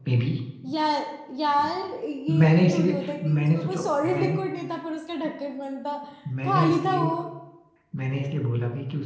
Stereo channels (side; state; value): both; identical; correlation 1.00